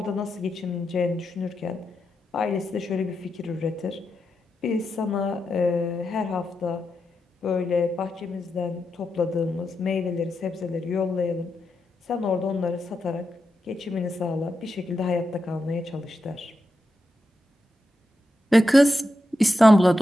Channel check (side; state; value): both; normal; correlation 0.87